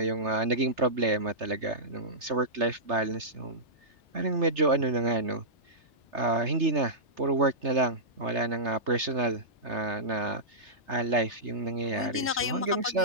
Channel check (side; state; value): both; normal; correlation -0.15